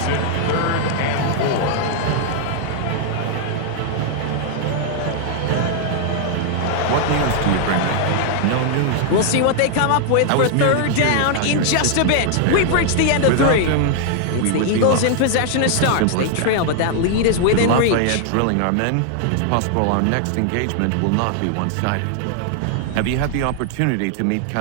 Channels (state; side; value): different; both; correlation 0.00